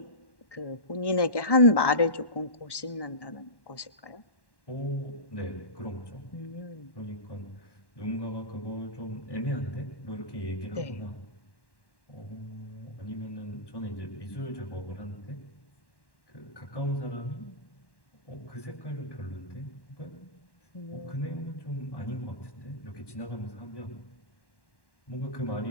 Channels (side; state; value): right; late; 1.1 ms